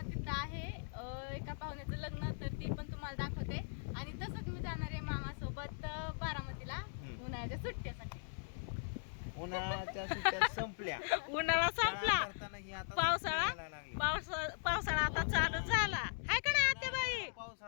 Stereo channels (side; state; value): right; silent; digital silence